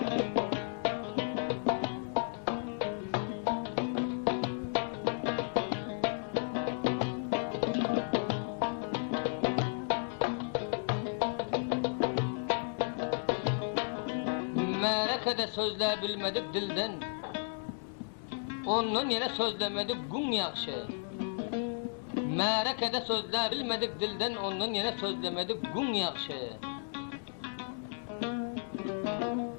Merekede sözler bilmedik dilden. ondan yine sözlemedik gün yakşı. Merekede sözler bilmedik dilden, ondan yine sözlemedik gün yakşı.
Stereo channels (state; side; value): silent; right; digital silence